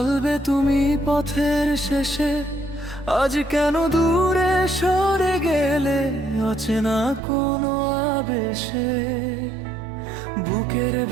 তুমি পথের শেষে, আজ কেন দূরে সরে গেলে অচেনা কোনো আবেশে। বুকের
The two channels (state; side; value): drops out; left; at 7.2 s